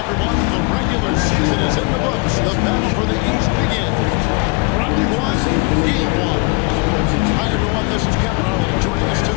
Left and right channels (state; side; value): quieter; right; 30.1 dB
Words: The regular season is in the books. The battle for the East begins. Round 1, Game 1. Hi, everyone. This is Kevin Harlan. Joining us